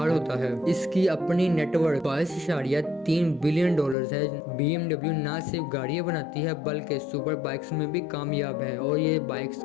होता है। इसकी अपनी नेटवर्क 22.3 बिलियन डॉलर है। BMW न सिर्फ गाड़ियाँ बनाती है बल्कि सुपर बाइक्स में भी कामयाब है और ये बाइक्स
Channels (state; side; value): drops out; right; at 4.0 s